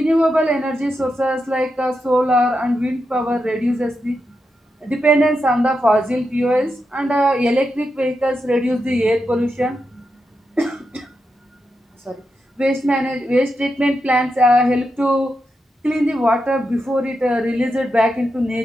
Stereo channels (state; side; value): normal; both; correlation 0.87